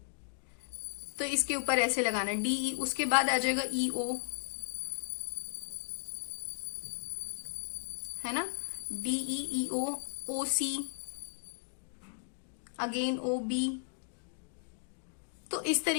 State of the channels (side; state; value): right; silent; digital silence